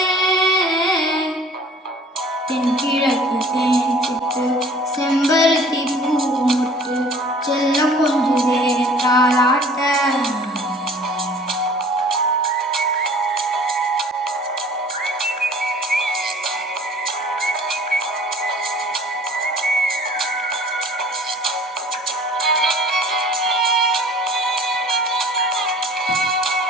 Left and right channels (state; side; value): normal; both; correlation 0.49